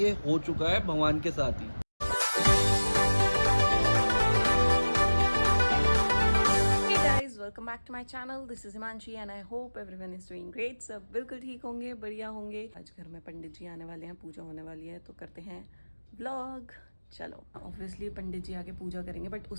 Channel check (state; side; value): inverted; both; correlation -1.00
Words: हो चुका है भगवान के साथ ही। Welcome back to my channel, this is Himanshi and I hope everyone is doing great. सब बिल्कुल ठीक होंगे, बढ़िया होंगे। आज घर में पंडित जी आने वाले हैं, पूजा होने वाली है, तो करते हैं व्लॉग। चलो, ऑब्वियसली पंडित जी आके पूजा करेंगे, बट